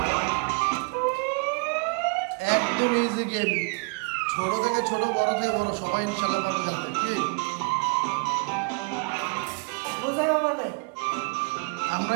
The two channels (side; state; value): left; quieter; 34.0 dB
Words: একদম ইজি গেম, ছোট থেকে ছোট, বড় থেকে বড়, সবাই ইনশাল্লাহ পারবে খেলতে। কি